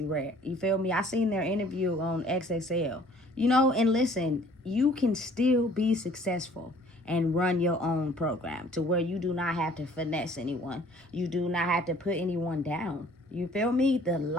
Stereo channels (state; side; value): normal; both; correlation 0.55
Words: Red. You feel me? I seen their interview on XXL. You know, and listen, you can still be successful and run your own program to where you do not have to finesse anyone. You do not have to put anyone down. You feel me? The